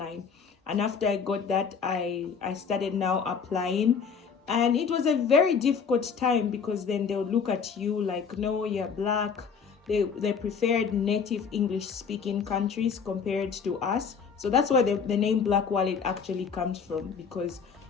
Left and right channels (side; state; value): right; quieter; 6.2 dB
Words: And after I got that, I started now applying And it was a very difficult time because then they'll look at you like, no, you're black. They preferred native English speaking countries compared to us. So that's where the name Black Wallet actually comes from, because